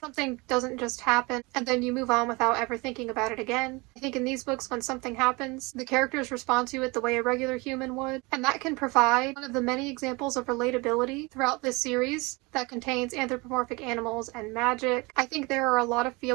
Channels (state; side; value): quieter; left; 25.9 dB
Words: doesn't just happen and then you move on without ever thinking about it again. I think in these books, when something happens, the characters respond to it the way a regular human would, and that can provide one of the many examples of relatability throughout this series that contains anthropomorphic animals and magic. I think there are a lot of